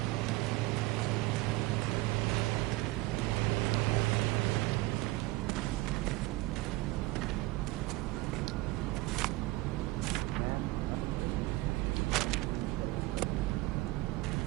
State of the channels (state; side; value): quieter; left; 19.9 dB